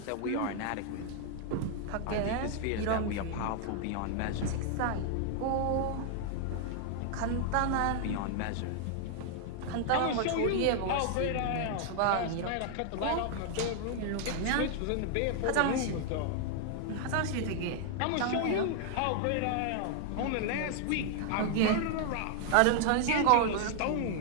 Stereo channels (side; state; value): both; different; correlation 0.00